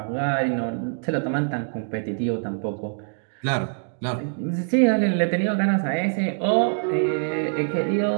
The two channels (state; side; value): silent; left; digital silence